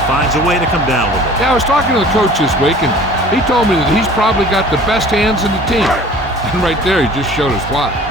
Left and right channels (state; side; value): normal; both; correlation 0.47